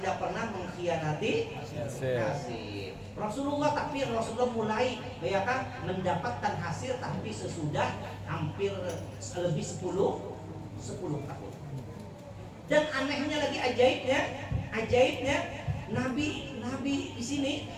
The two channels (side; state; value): both; identical; correlation 1.00